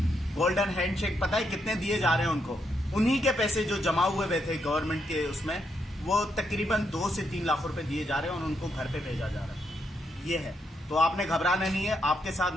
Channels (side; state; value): both; normal; correlation 0.79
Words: गोल्डन हैंडशेक पता है कितने दिए जा रहे हैं उनको? उन्हीं के पैसे जो जमा हुए थे गवर्नमेंट के उसमें, वो तकरीबन 2 से 3 लाख रुपए दिए जा रहे हैं और उनको घर पे भेजा जा रहा है। ये है, तो आपने घबराना नहीं है, आपके साथ